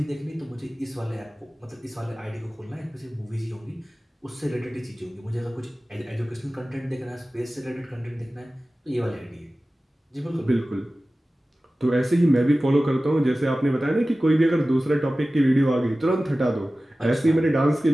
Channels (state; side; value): normal; both; correlation 0.96